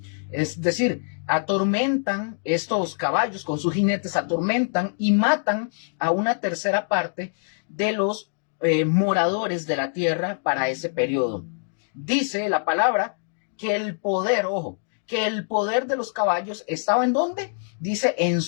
Es decir, atormentan estos caballos con sus jinetes, atormentan y matan a una tercera parte de los moradores de la tierra para ese periodo. Dice la palabra que el poder, ojo, que el poder de los caballos estaba ¿en dónde? Dice en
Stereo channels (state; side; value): silent; right; digital silence